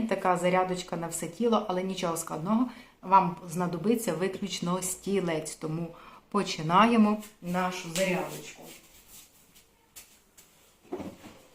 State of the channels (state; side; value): identical; both; correlation 1.00